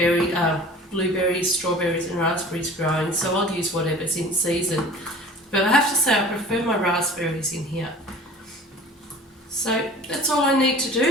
blueberries, strawberries and raspberries growing, so I'll use whatever's in season. But I have to say I prefer my raspberries in here. So that's all I need to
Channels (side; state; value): both; normal; correlation 0.44